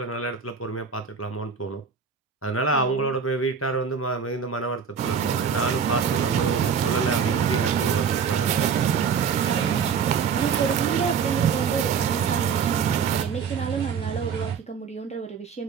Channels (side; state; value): left; quieter; 6.5 dB